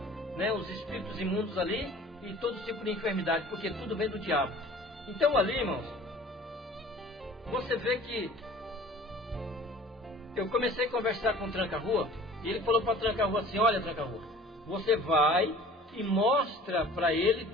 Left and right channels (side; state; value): both; normal; correlation 0.47